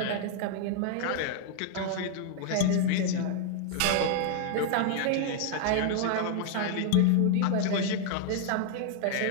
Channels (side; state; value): both; different; correlation 0.00